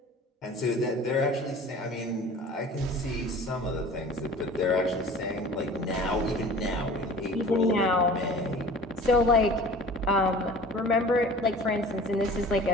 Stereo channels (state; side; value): normal; both; correlation 0.43